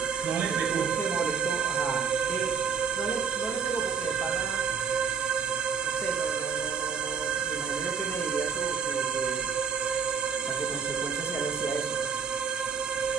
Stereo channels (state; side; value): quieter; left; 6.3 dB